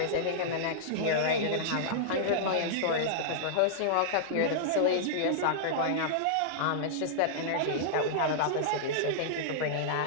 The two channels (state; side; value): different; both; correlation -0.02